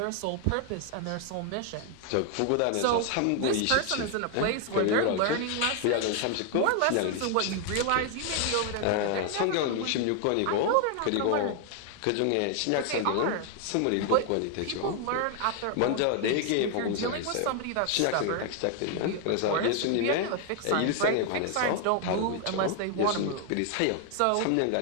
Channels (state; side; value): different; both; correlation 0.00